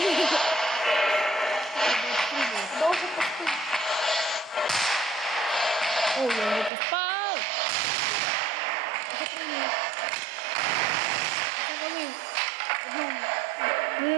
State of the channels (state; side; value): drops out; left; at 6.7 s